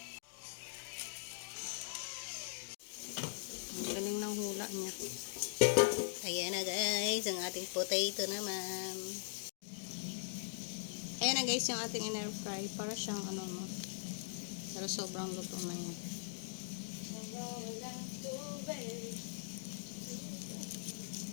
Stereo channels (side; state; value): right; silent; digital silence